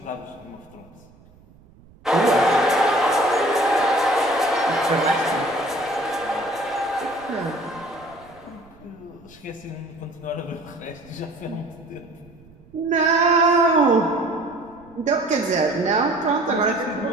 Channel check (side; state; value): right; noise; rumble, 26 dB below the sound